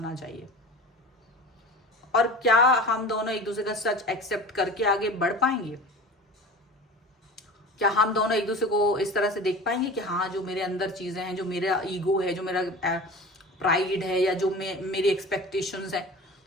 चाहिए। और क्या हम दोनों एक दूसरे का सच एक्सेप्ट करके आगे बढ़ पाएंगे? क्या हम दोनों एक दूसरे को इस तरह से देख पाएंगे कि हाँ, जो मेरे अंदर चीजें हैं, जो मेरा ईगो है, जो मेरा प्राइड है, या जो मेरी एक्सपेक्टेशंस है,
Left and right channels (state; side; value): normal; both; correlation 0.36